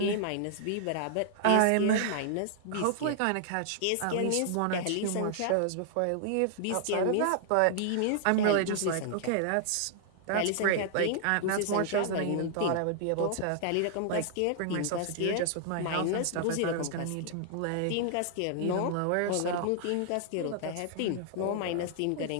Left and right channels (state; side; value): different; both; correlation -0.01